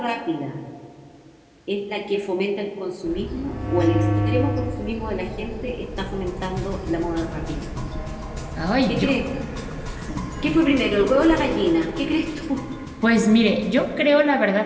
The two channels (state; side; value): identical; both; correlation 1.00